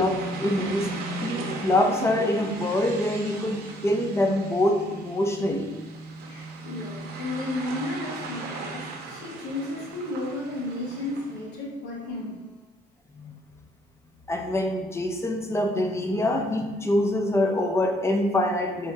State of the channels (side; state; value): both; normal; correlation 0.66